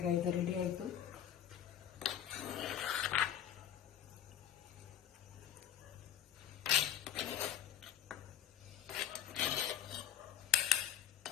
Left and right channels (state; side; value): quieter; right; 10.5 dB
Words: ಇದು ರೆಡಿ ಆಯಿತು.